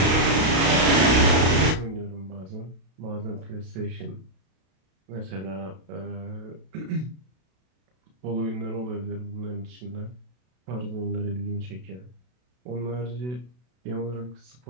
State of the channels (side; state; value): left; late; 32 ms